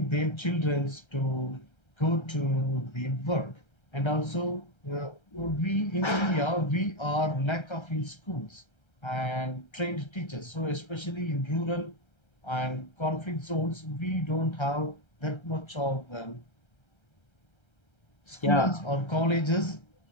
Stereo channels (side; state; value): right; late; 1.3 ms